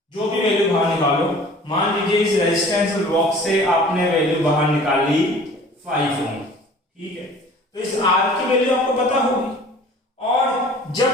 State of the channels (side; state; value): both; normal; correlation 0.47